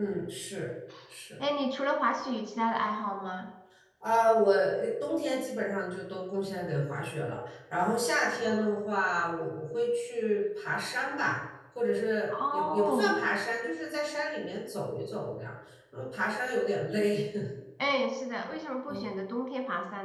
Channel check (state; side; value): identical; both; correlation 1.00